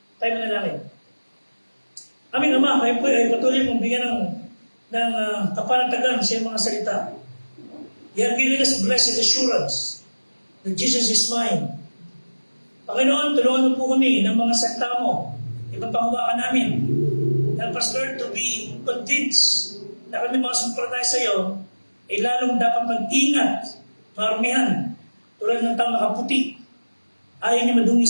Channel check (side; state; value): both; inverted; correlation -1.00